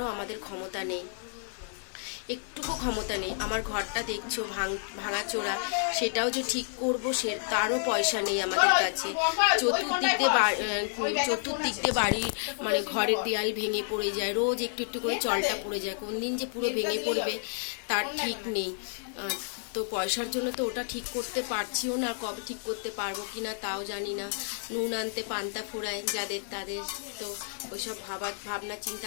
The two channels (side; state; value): right; silent; digital silence